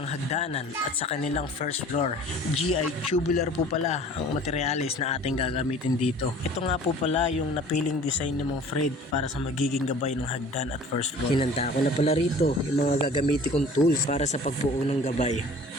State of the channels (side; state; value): both; normal; correlation 0.47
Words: hagdanan at sa kanilang first floor. GI tubular po pala ang materialis na ating gagamitin dito. Ito nga po pala yung napiling design ni Mang Fred para sa magiging gabay ng hagdan at first floor. Hinanda ko na pala rito yung mga gagamitin kong tools para sa pagbuo ng gabay.